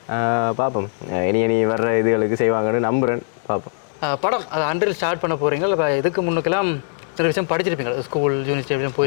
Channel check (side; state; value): right; silent; digital silence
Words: பார்ப்போம், இனி வர்ற இதுகளுக்கு செய்வாங்கன்னு நம்புகிறேன். பார்ப்போம். படம் அது அன்றில் ஸ்டார்ட் பண்ண போகிறீங்க. இப்போ இதுக்கு முன்னுக்கெல்லாம் சில விஷயம் படிச்சிருப்பீங்க, ஸ்கூல் யூனிவர்சிட்டி அப்படிலாம்